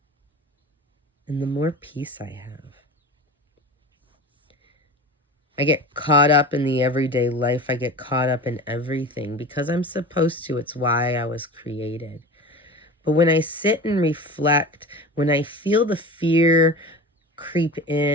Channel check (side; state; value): both; normal; correlation 0.33